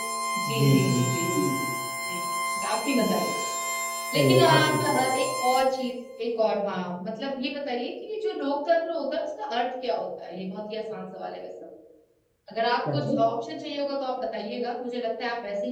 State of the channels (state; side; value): identical; both; correlation 1.00